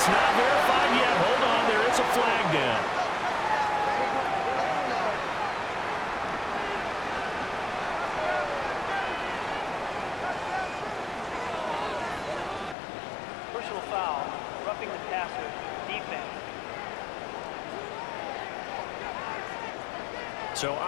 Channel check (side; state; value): right; drops out; at 12.8 s